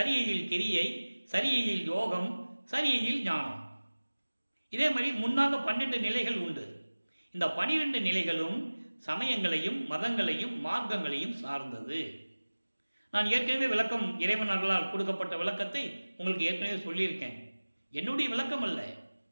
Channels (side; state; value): both; inverted; correlation -1.00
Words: கிரியை, சரியையில் யோகம், சரியையில் ஞானம். இதே மாதிரி முன்னாக 12 நிலைகள் உண்டு. இந்த 12 நிலைகளும் சமயங்களையும் மதங்களையும் மார்க்கங்களையும் சார்ந்தது. நான் ஏற்கனவே விளக்கம் இறைவன் அருளால் கொடுக்கப்பட்ட விளக்கத்தை உங்களுக்கு ஏற்கனவே சொல்லியிருக்கேன். என்னுடைய விளக்கம் அல்ல,